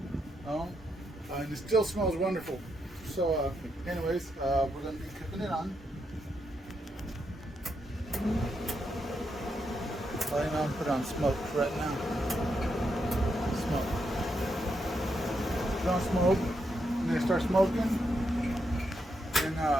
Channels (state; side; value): normal; both; correlation 0.81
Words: and it still smells wonderful. So anyways, we're going to be cooking it on. I'm going to put on smoke right now. Smoke. Put on smoke, and then start smoking. And